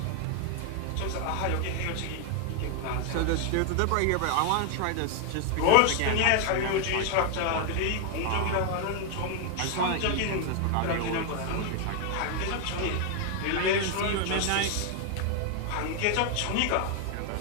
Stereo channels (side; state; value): both; different; correlation 0.01